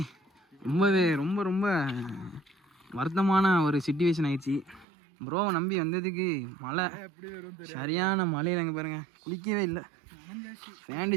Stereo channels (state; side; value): drops out; left; at 4.9 s